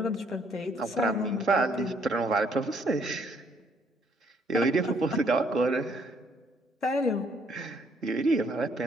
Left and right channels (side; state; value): both; normal; correlation 0.67